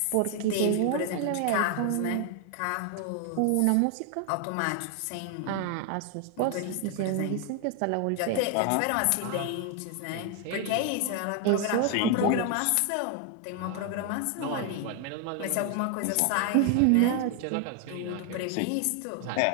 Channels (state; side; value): different; both; correlation 0.00